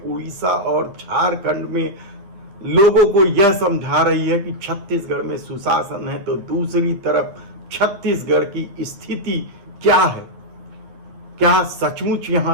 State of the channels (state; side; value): late; left; 9.9 ms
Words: उड़ीसा और झारखंड में लोगों को यह समझा रही है कि छत्तीसगढ़ में सुशासन है, तो दूसरी तरफ छत्तीसगढ़ की स्थिति क्या है? क्या सचमुच यहां